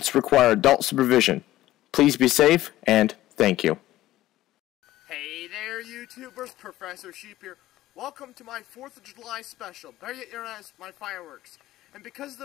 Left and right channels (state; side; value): quieter; right; 15.2 dB